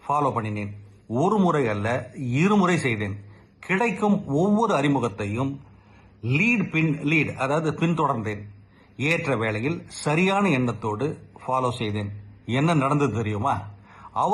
ஃபாலோ பண்ணினேன். ஒரு முறை அல்ல, இருமுறை செய்தேன். கிடைக்கும் ஒவ்வொரு அறிமுகத்தையும் லீட் அதாவது பின்தொடர்ந்தேன். ஏற்ற வேளையில் சரியான எண்ணத்தோடு ஃபாலோ செய்தேன். என்ன நடந்தது தெரியுமா?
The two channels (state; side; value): identical; both; correlation 1.00